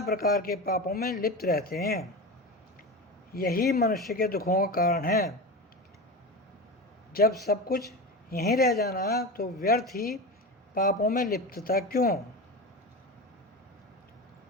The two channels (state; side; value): normal; both; correlation 0.25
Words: प्रकार के पापों में लिप्त रहते हैं। यही मनुष्य के दुखों का कारण है। जब सब कुछ यहीं रह जाना तो व्यर्थ ही पापों में लिप्तता क्यों?